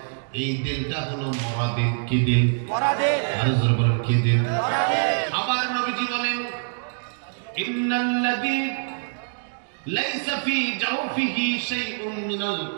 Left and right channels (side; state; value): left; silent; digital silence